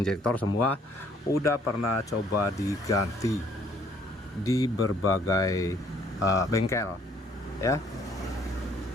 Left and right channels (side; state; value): both; normal; correlation 0.62